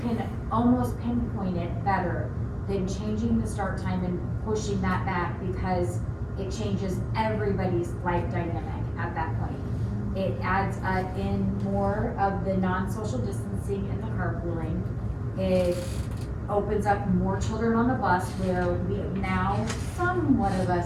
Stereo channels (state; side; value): identical; both; correlation 1.00